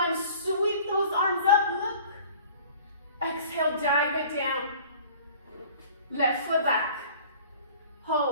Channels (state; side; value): inverted; both; correlation -0.47